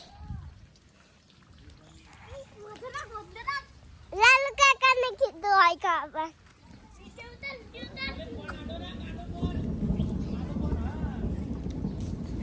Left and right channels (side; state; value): both; identical; correlation 1.00